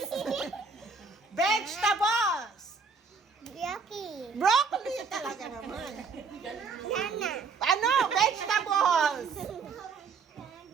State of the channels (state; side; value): quieter; left; 4.9 dB